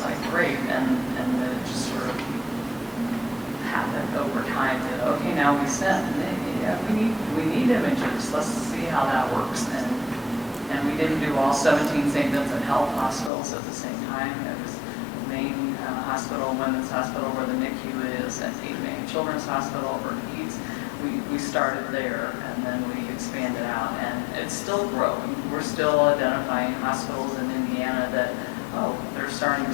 like great. And then it just sort of happened over time that, okay, now we sent. And yeah, we need images. Let's see how that works. And we didn't do all 17 St. Vincent Health hospitals at the same time. It was the main hospital, Women's Hospital, where the NICU is, and Cape May Children's Hospital, where PEDS. We started there, and then we expanded out, and it's still growing. We're still identifying hospitals in Indiana that, oh, they're starting to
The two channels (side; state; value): right; drops out; at 13.3 s